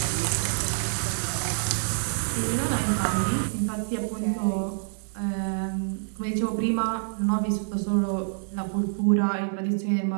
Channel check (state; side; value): silent; left; 57 dB below the other